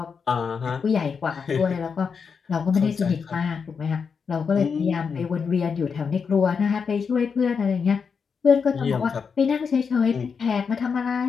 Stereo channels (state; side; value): quieter; right; 5.9 dB